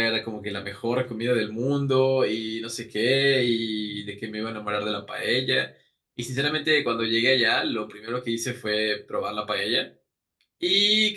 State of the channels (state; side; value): identical; both; correlation 1.00